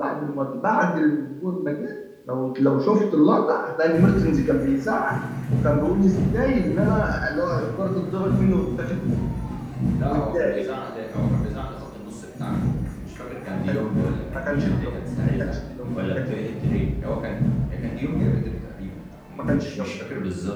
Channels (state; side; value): identical; both; correlation 1.00